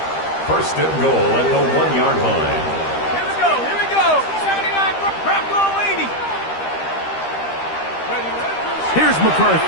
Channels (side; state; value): right; late; 13 ms